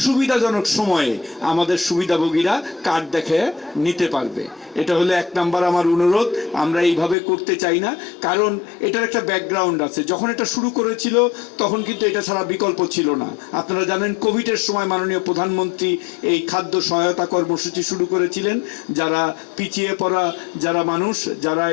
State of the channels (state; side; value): drops out; right; at 7.2 s